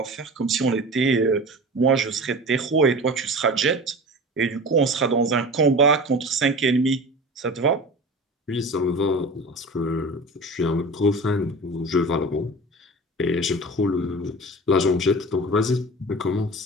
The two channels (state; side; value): normal; both; correlation 0.34